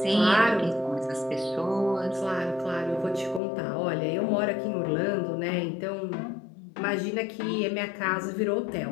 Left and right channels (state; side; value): drops out; right; at 3.4 s